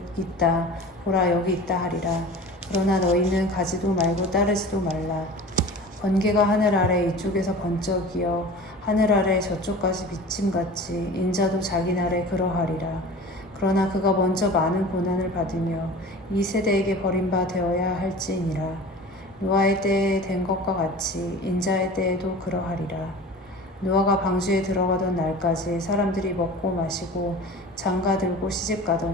있다 보라 여기 있다 하리라. 그러나 너희는 가지도 말고 따르지도 말라. 번개가 하늘 아래 이쪽에서 번쩍이어 하늘 아래 저쪽까지 비침같이 인자도 자기 날에 그러하리라. 그러나 그가 먼저 많은 고난을 받으며 이 세대에게 버림바 되어야 할지니라. 노아의 때에 된 것과 같이 인자의 때에도 그러하리라. 노아가 방주에 들어가던 날까지 사람들이 먹고 마시고 장가들고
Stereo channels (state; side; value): normal; both; correlation 0.38